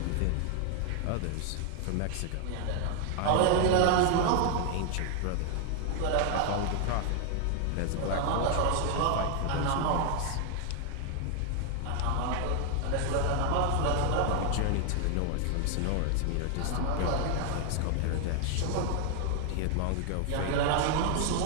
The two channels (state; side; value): different; both; correlation 0.00